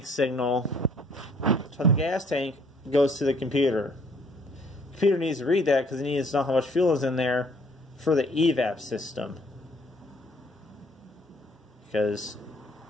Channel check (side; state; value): both; normal; correlation 0.61